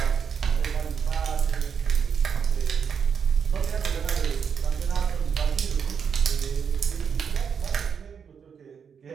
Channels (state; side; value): quieter; left; 6.8 dB